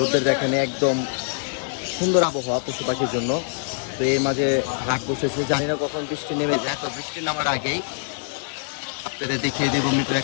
দেখানে একদম সুন্দর আবহাওয়া পশু পাখির জন্য। তো এর মাঝে হাট বসেছে, জানি না কখন বৃষ্টি নেমে যায়। তো বৃষ্টি নামার আগেই আপনাদের দেখিয়ে দেবো মিরপুর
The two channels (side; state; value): right; silent; 63 dB below the other